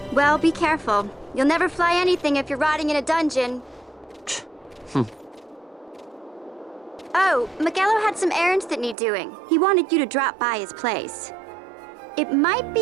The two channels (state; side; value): drops out; left; at 9.0 s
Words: Well, be careful. You'll never fly anything if you're rotting in a dungeon. Oh, Miguelo had some errands that need doing. He wanted you to drop by his place. It might